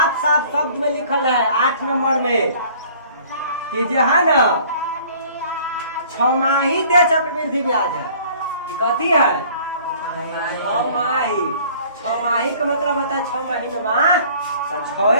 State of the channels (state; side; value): inverted; both; correlation -0.53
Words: साफ शब्द में लिखल है 8 नंबर में कि जो है ना 6 दे चक्रवृद्धि ब्याज है। कथी है 6 माही का मतलब होता है 6 महीना तो